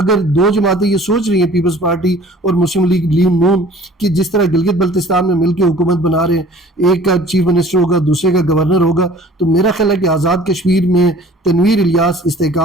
2 جماعتیں یہ سوچ رہی ہیں پیپلز پارٹی اور مسلم لیگ نون کہ جس طرح گلگت بلتستان میں مل کے حکومت بنا رہے ہیں، ایک کا چیف منسٹر ہوگا دوسرے کا گورنر ہوگا، تو میرا خیال ہے کہ آزاد کشمیر میں تنویر الیاس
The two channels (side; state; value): both; normal; correlation 0.50